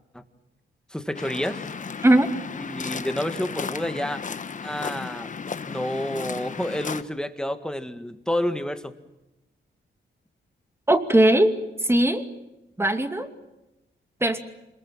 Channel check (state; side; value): normal; both; correlation 0.82